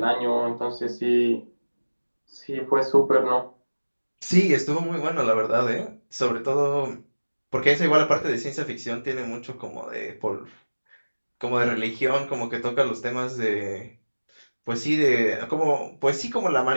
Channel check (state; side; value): inverted; both; correlation -1.00